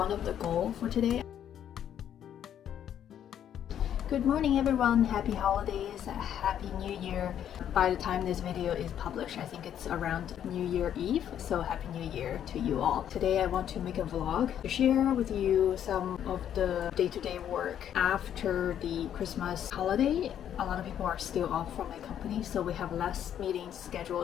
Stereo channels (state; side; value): quieter; right; 9.9 dB